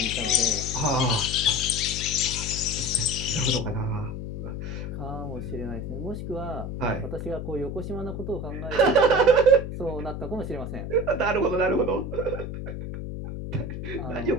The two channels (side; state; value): left; noise; hum, 6 dB below the sound